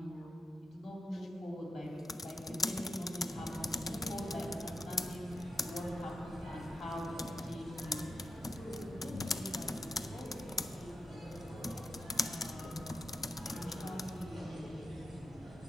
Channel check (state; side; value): normal; both; correlation 0.87